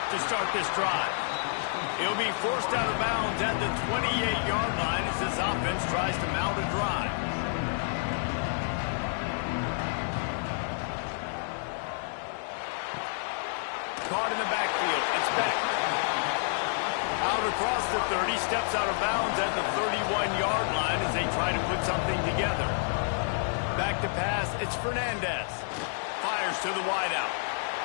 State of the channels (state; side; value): silent; right; digital silence